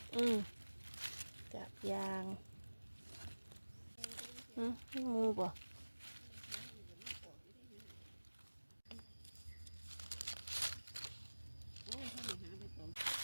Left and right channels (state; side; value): inverted; both; correlation -1.00